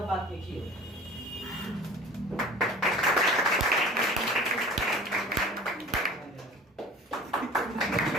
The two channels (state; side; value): normal; both; correlation 0.43